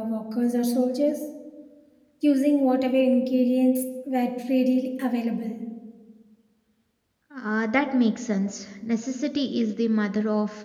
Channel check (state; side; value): identical; both; correlation 1.00